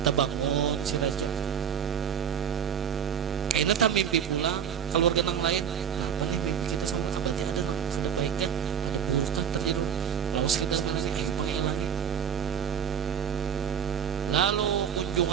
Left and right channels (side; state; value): left; quieter; 8.1 dB